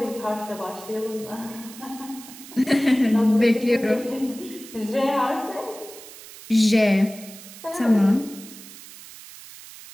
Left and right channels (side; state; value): right; noise; hiss, 17 dB below the sound